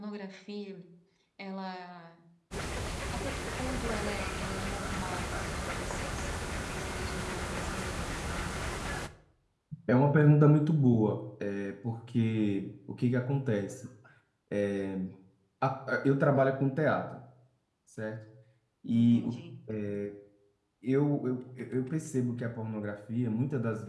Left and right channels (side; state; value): both; identical; correlation 1.00